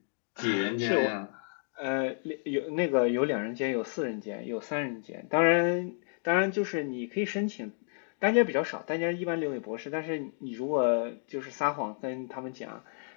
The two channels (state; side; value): silent; right; 57 dB below the other